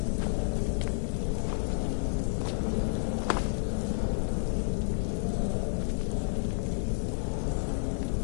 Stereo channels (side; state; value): right; silent; digital silence